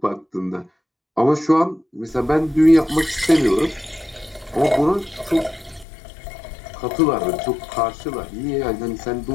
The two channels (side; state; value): right; drops out; at 5.9 s